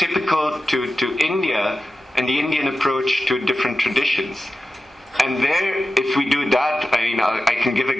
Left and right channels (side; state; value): both; normal; correlation 0.94